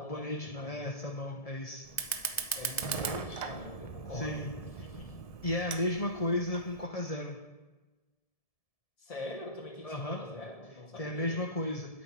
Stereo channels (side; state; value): right; late; 1.7 ms